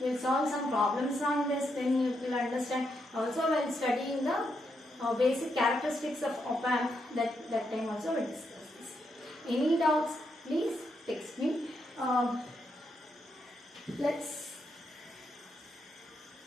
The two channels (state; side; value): normal; both; correlation 0.80